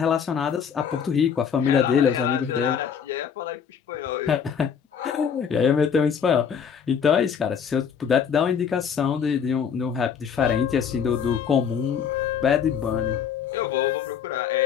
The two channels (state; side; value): quieter; right; 7.3 dB